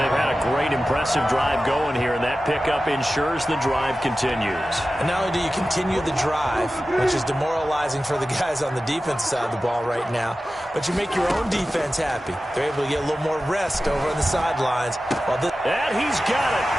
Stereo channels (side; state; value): both; normal; correlation 0.94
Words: had a great, impressive drive going here, and that pickup ensures the drive continues. And not only do you continue the drive, which is demoralizing for the guys on the defensive side of the ball right now, but you make your own defense happy. They're able to get a little more rest over on the sidelines. And he's got it.